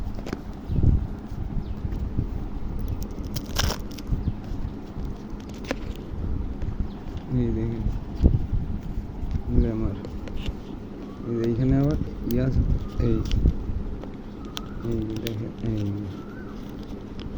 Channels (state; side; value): identical; both; correlation 1.00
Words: এই দেখেন লেমার। এইখানে আবার ইয়াস এই এই দেখেন এই